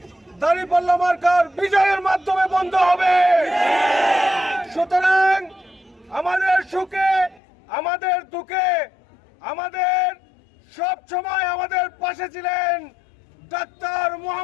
দাঁড়িপাল্লা মার্কার বিজয়ের মাধ্যমে বন্ধ হবে। সুতরাং আমাদের সুখে আমাদের দুঃখে আমাদের সব সময় আমাদের পাশে ছিলেন ডাক্তার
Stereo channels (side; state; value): right; drops out; at 7.4 s